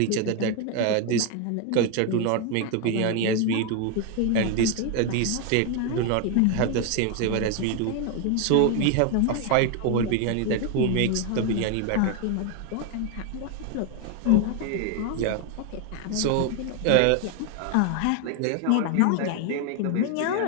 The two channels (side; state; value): both; different; correlation 0.01